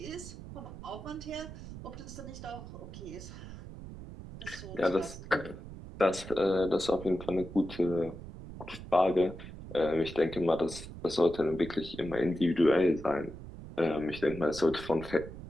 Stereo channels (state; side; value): noise; right; rumble, 12 dB below the sound